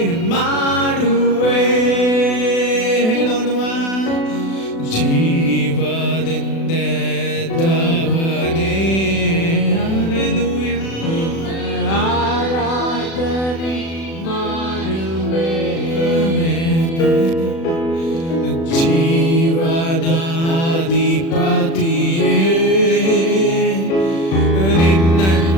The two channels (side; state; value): right; late; 36 ms